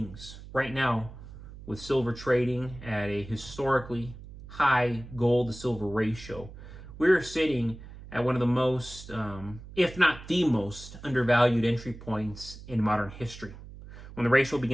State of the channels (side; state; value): right; noise; hum, 15 dB below the sound